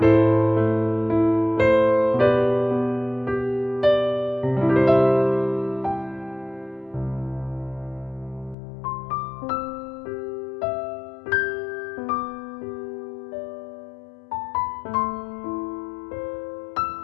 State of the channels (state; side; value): drops out; right; at 8.6 s